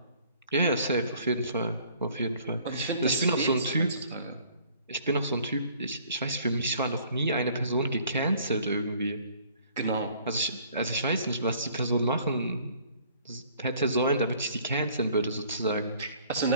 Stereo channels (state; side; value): inverted; both; correlation -0.57